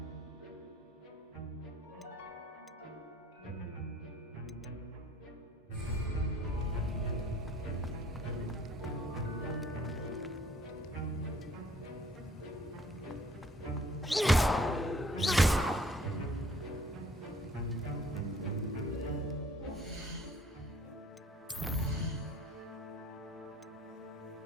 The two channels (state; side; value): normal; both; correlation 0.57